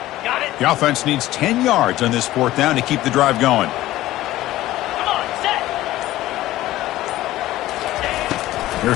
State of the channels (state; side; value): quieter; right; 15.6 dB